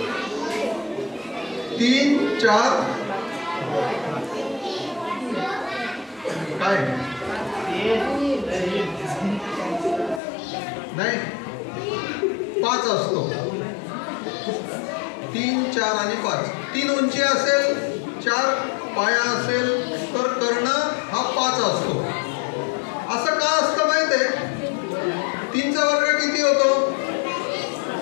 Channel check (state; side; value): drops out; right; at 10.2 s